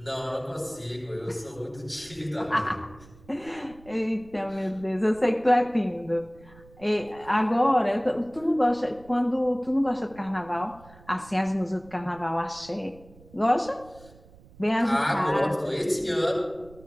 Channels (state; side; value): noise; right; rumble, 23 dB below the sound